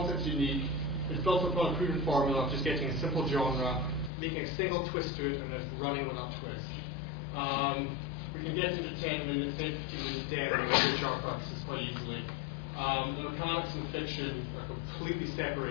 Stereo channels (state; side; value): drops out; right; at 4.1 s